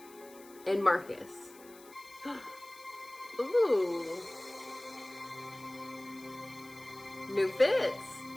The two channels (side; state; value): left; noise; hiss, 22 dB below the sound